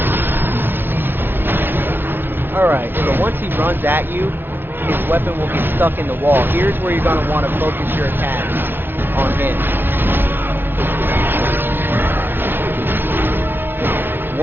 Alright, so once he runs at you, his weapon will get stuck in the wall. Here's where you're going to want to focus your attacks on him.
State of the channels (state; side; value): late; left; 0.10 ms